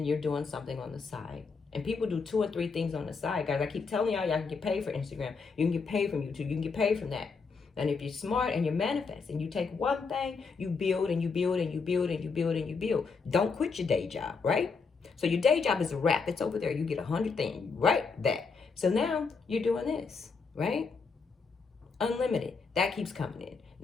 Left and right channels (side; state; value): right; quieter; 4.9 dB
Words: you're doing something on the side. And people do 2 or 3 things on the side, guys. I keep telling y'all can get paid for Instagram. You can get paid from YouTube. You can get paid from that. And if you're smart and you're manifesting, you take one thing, you build and you build and you build and you build and you build. Don't quit your day job, right? So your day job is a wrap. It's over there. You get 100 things, right? That. So now you're doing this, right? Unlimited. That keeps coming in.